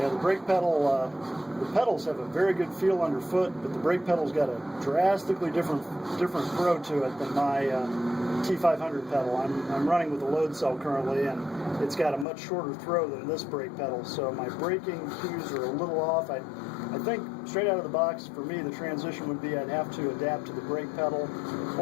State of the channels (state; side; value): drops out; right; at 12.2 s